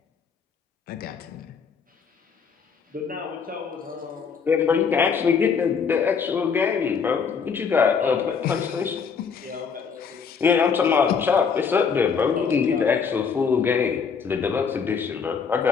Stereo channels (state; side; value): quieter; right; 6.1 dB